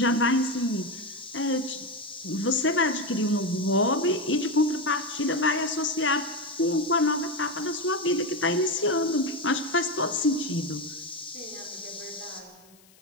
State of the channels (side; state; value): left; noise; hiss, 28 dB below the sound